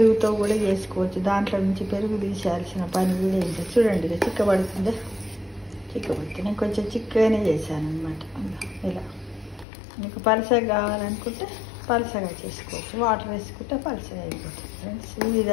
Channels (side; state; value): right; drops out; at 9.7 s